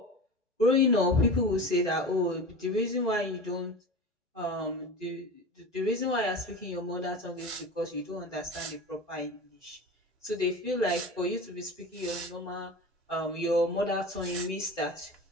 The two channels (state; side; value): normal; both; correlation 0.32